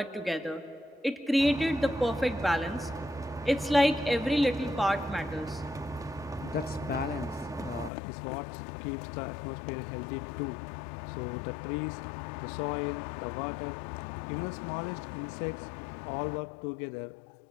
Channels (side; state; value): right; drops out; at 7.9 s